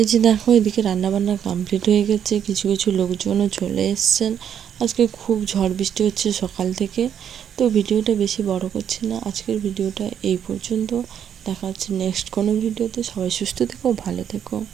যে দেখো এদিকে রান্নাবান্না কমপ্লিট হয়ে গেছে, কিছু কিছু লোকজনও চলে এসছেন। আজকে খুব ঝড় বৃষ্টি হচ্ছে সকাল থেকে। তো ভিডিওটা বেশি বড় করছি না, আজকের ভিডিওটা এই পর্যন্ত। দেখা হচ্ছে নেক্সট কোনো ভিডিওতে। সবাই সুস্থ থেকো, ভালো থেকো,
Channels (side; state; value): left; quieter; 8.9 dB